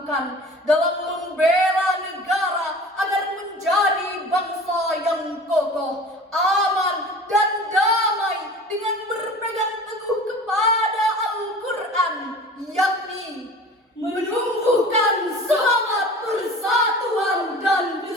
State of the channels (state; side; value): normal; both; correlation 0.41